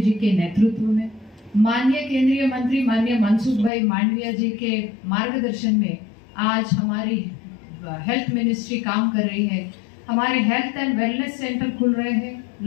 के नेतृत्व में, माननीय केंद्रीय मंत्री माननीय मनसुख भाई मांडविया जी के मार्गदर्शन में आज हमारी हेल्थ मिनिस्ट्री काम कर रही है। हमारे हेल्थ एंड वेलनेस सेंटर खुल रहे हैं,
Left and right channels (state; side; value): drops out; right; at 3.7 s